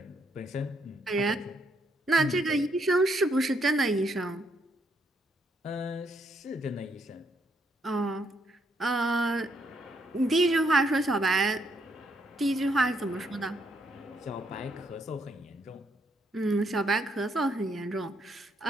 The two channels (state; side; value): normal; both; correlation 0.74